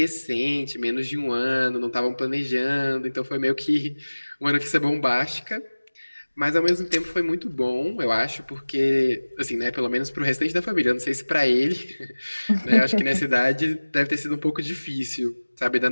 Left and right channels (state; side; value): inverted; both; correlation -1.00